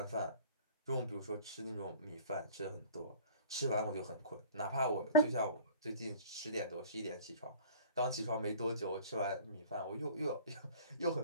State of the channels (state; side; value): inverted; both; correlation -0.46